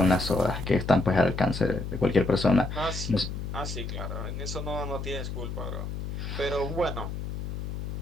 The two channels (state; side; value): noise; left; hum, 5 dB below the sound